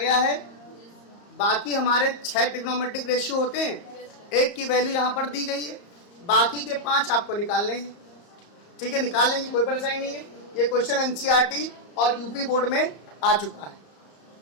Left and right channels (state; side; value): late; right; 34 ms